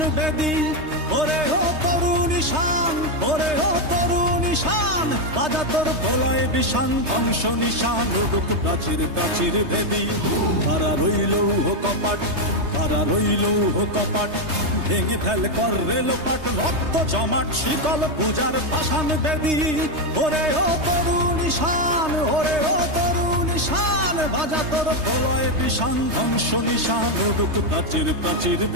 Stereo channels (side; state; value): left; late; 3.2 ms